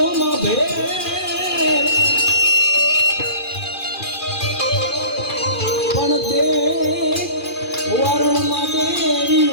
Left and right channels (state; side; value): late; right; 2.4 ms